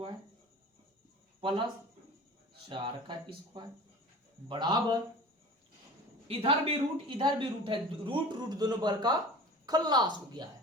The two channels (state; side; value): normal; both; correlation 0.39